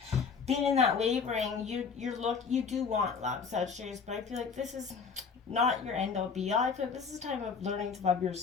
been in that wavering. You do want love, Sagittarius, but I feel like this is not your end all be all. I feel like this is a time of learning to love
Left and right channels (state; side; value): quieter; right; 5.6 dB